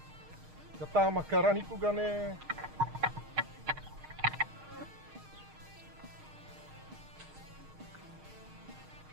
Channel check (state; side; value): late; left; 6.5 ms